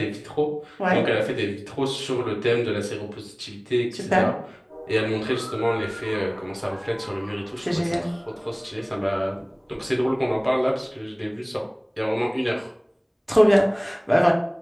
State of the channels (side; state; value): both; identical; correlation 1.00